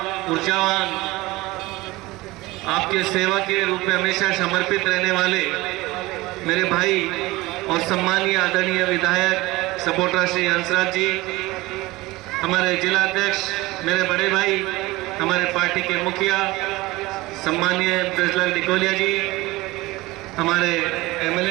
ऊर्जावान, आपके सेवा के रूप में हमेशा समर्पित रहने वाले मेरे भाई और सम्मानीय आदरणीय विधायक सपोर्टर श्री हंसराज जी, हमारे जिला अध्यक्ष मेरे बड़े भाई, हमारे पार्टी के मुखिया सम्मानीय ब्रजलाल डिकोलिया जी, हमारे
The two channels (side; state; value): left; quieter; 20.2 dB